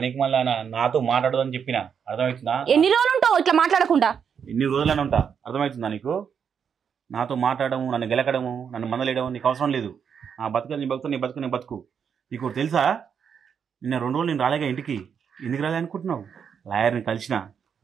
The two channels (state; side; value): quieter; left; 7.2 dB